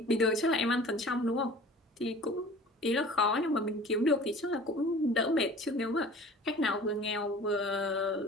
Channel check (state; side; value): normal; both; correlation 0.44